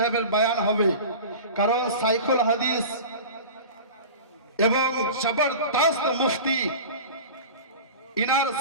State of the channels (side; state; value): both; inverted; correlation -0.34